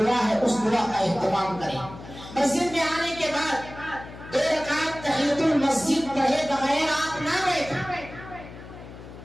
ہے اس دعا کا اہتمام کریں۔ مسجد میں آنے کے بعد 2 رکعت تحیۃ المسجد پڑھے بغیر آپ نہ بیٹھیں۔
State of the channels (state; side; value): noise; left; hum, 15 dB below the sound